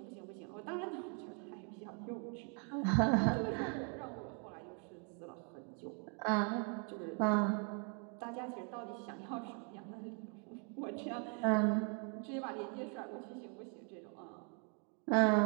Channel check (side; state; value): left; quieter; 39.2 dB